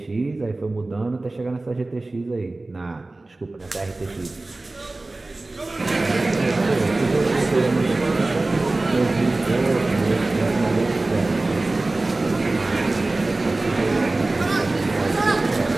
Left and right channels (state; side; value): quieter; left; 3.0 dB